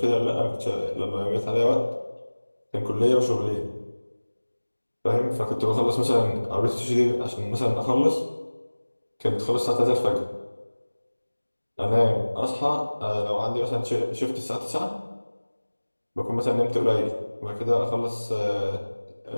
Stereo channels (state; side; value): inverted; both; correlation -1.00